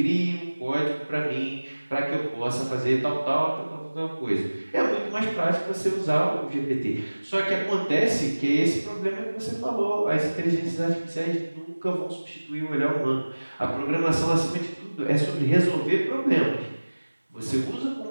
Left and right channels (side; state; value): both; inverted; correlation -1.00